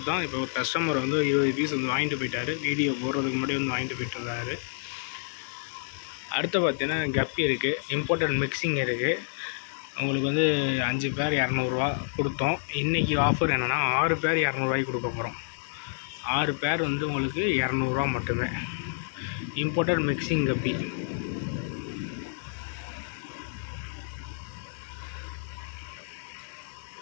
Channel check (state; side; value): silent; right; digital silence